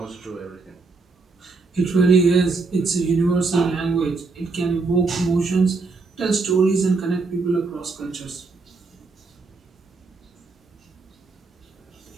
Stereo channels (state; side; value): quieter; left; 4.0 dB